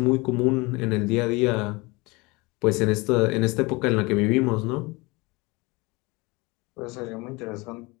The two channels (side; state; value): right; quieter; 24.8 dB